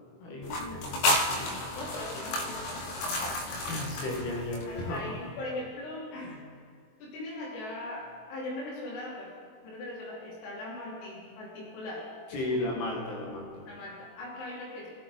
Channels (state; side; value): late; right; 23 ms